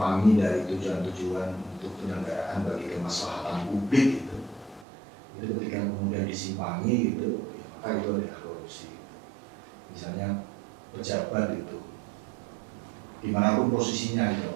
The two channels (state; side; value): drops out; left; at 4.9 s